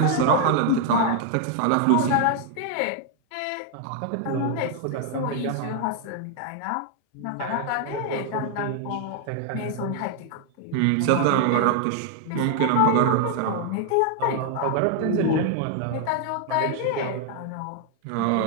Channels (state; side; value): different; both; correlation 0.00